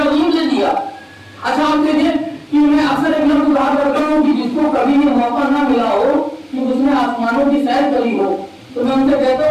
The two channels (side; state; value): both; identical; correlation 1.00